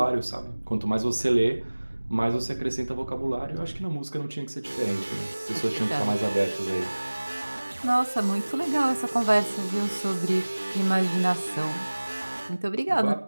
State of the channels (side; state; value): both; inverted; correlation -1.00